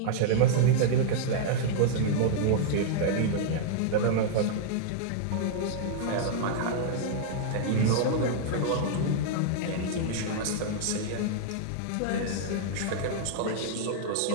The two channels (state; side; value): different; both; correlation -0.01